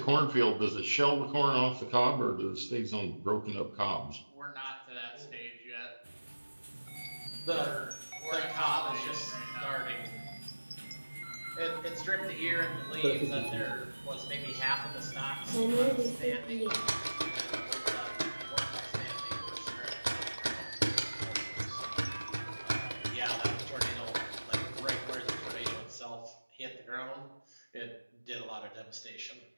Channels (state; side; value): inverted; both; correlation -1.00